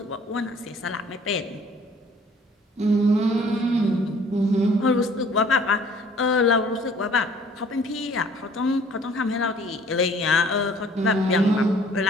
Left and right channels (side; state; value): both; normal; correlation 0.55